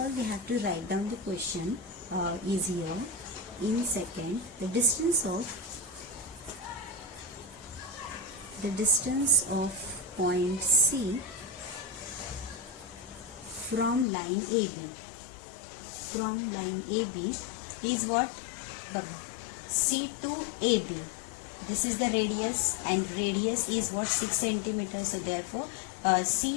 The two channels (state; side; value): drops out; right; at 14.1 s